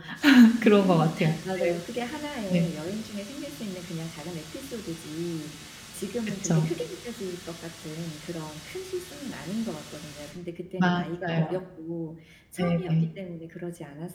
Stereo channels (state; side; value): identical; both; correlation 1.00